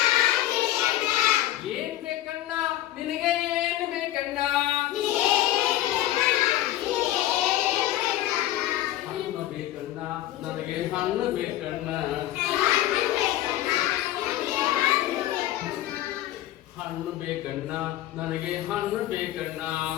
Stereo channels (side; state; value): right; quieter; 14.2 dB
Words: ಏನ್ ಬೇಕಣ್ಣ ನಿನಗೆ ಏನ್ ಬೇಕಣ್ಣ ಹಣ್ಣು ಬೇಕಣ್ಣ ನನಗೆ ಹಣ್ಣು ಬೇಕಣ್ಣ ಹಣ್ಣು ಬೇಕಣ್ಣ ನನಗೆ ಹಣ್ಣು ಬೇಕಣ್ಣ